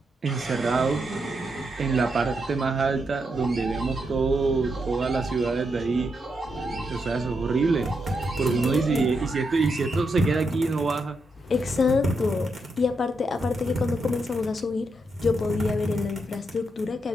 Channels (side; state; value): both; normal; correlation 0.82